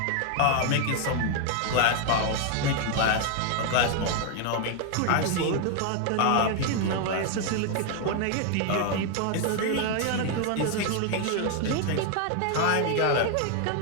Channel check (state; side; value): different; both; correlation 0.00